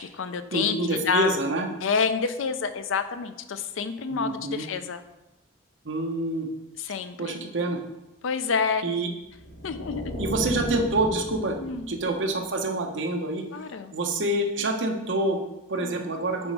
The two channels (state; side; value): normal; both; correlation 0.05